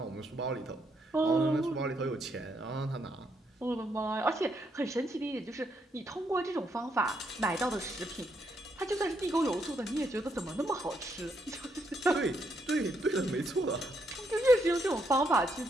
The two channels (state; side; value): normal; both; correlation 0.76